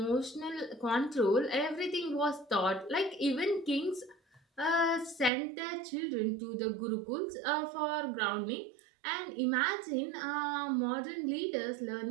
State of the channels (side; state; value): left; drops out; at 5.3 s